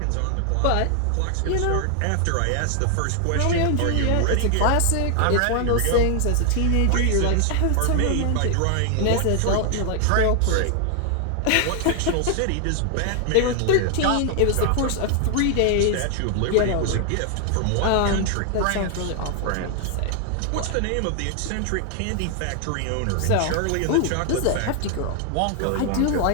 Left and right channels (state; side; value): different; both; correlation 0.00